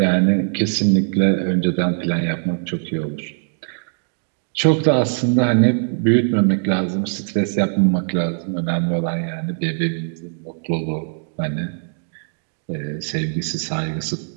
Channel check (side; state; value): left; silent; digital silence